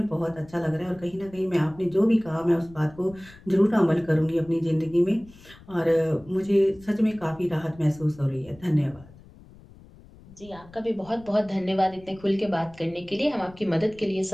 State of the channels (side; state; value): left; noise; rumble, 22 dB below the sound